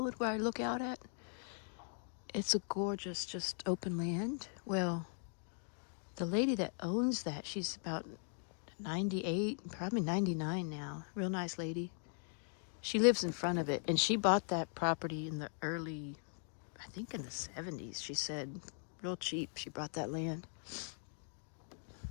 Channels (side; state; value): right; silent; 51 dB below the other